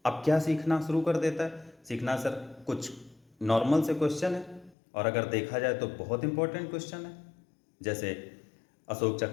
अब क्या सीखना शुरू कर देता है? सीखना सर कुछ नॉर्मल से क्वेश्चन है, और अगर देखा जाए तो बहुत इंपॉर्टेंट क्वेश्चन है। जैसे अशोक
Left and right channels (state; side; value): drops out; right; at 4.8 s